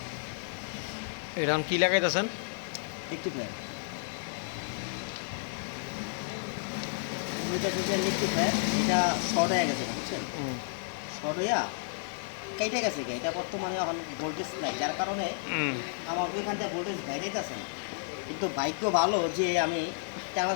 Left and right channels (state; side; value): silent; right; digital silence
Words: এরকম কি লাগাইতেছেন? একটু ফ্যান একটু ফ্যান এটা শর্ট হয়ে গেছে বুঝছেন, শর্ট হইয়া কেটে গেছে এটা বর্তমানে এখন ভোল্টেজ নাই, যার কারণে আমার ওইখান থেকে ভোল্টেজ বাইরে আছে না। কিন্তু বাইকও ভালো যে আমি